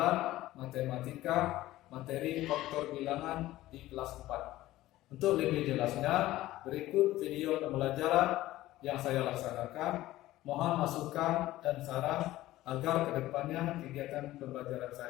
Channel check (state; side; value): quieter; right; 16.0 dB